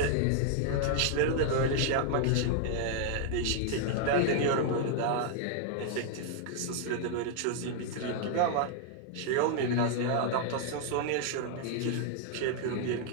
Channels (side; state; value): both; different; correlation -0.01